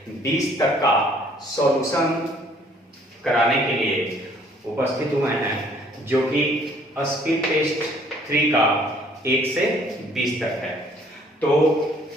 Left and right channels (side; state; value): both; normal; correlation 0.60